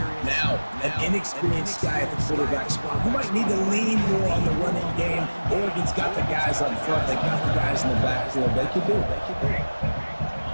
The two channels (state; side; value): inverted; both; correlation -1.00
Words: Now, an inexperienced guy at the quarterback spot who might need to lean more on the running game. Oregon's got the guys up front. They got the guys in the backfield. They can do it.